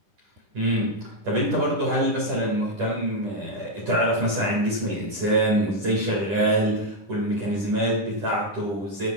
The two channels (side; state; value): left; late; 10 ms